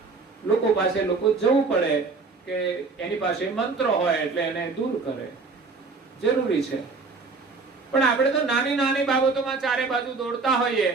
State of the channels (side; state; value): left; quieter; 4.2 dB